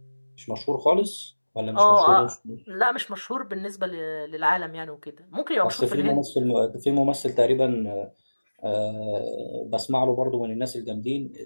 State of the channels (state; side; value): inverted; both; correlation -1.00